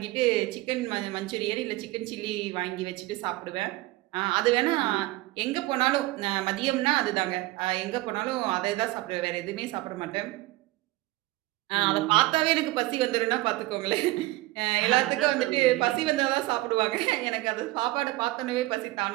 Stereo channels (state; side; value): quieter; left; 19.1 dB